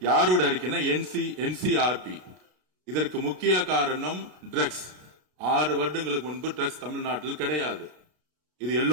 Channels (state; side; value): late; left; 33 ms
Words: யாரோட அறிக்கைன்னா NCRP. இதற்கு முக்கிய காரணம் ட்ரக்ஸ். 6 வருடங்களுக்கு முன்பு ட்ரக்ஸ் தமிழ்நாட்டில் கிடையாது, இது